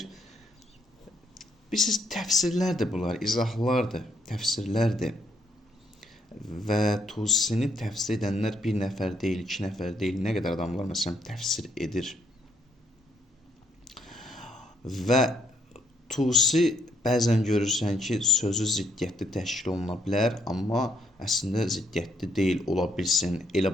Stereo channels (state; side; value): normal; both; correlation 0.71